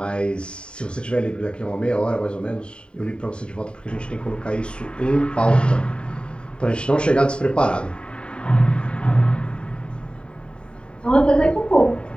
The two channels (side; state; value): right; late; 0.052 ms